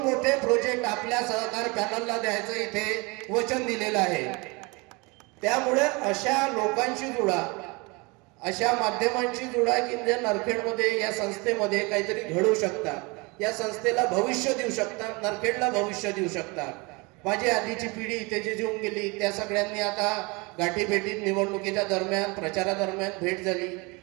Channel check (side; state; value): left; quieter; 27.2 dB